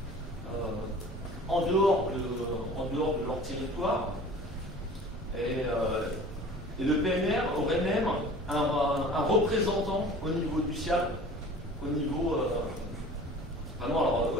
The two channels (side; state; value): both; normal; correlation 0.44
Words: en dehors de leur territoire. Et le PNR aurait même un représentant au niveau du SIAB, au niveau. Vraiment, alors